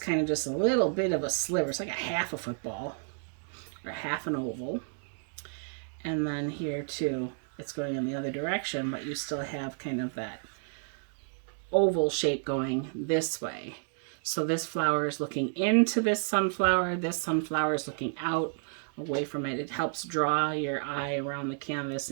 of just a little bit of a sliver. It's like a half a football or half an oval. And then here too, it's going in the other direction, but you still have kind of that oval shape going this way. So this flower is looking into this sunflower is looking out away from it. It helps draw your eye around the canvas,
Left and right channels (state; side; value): silent; left; digital silence